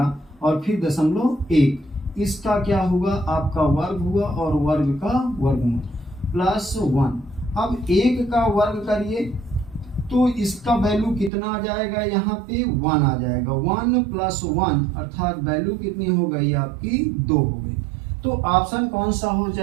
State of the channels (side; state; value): left; drops out; at 11.3 s